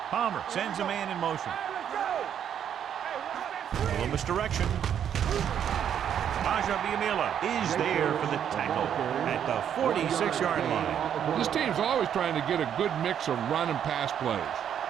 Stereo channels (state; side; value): quieter; left; 9.1 dB